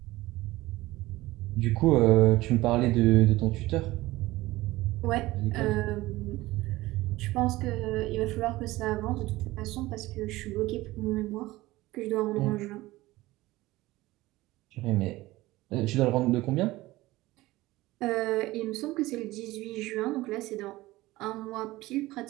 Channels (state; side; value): quieter; left; 18.5 dB